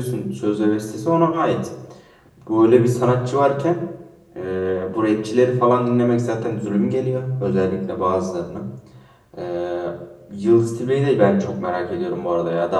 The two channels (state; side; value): identical; both; correlation 1.00